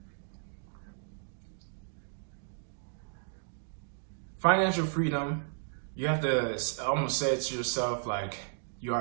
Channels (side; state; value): left; silent; digital silence